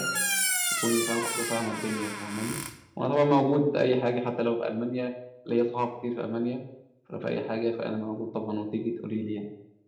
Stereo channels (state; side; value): identical; both; correlation 1.00